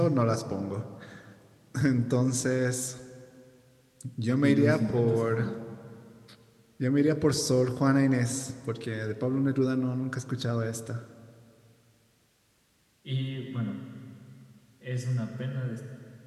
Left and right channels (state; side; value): identical; both; correlation 1.00